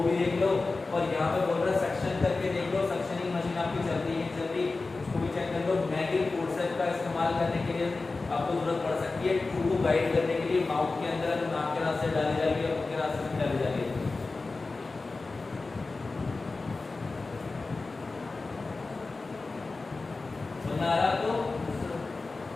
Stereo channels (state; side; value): quieter; right; 3.7 dB